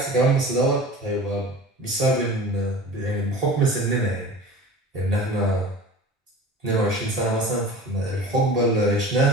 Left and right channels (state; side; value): normal; both; correlation 0.38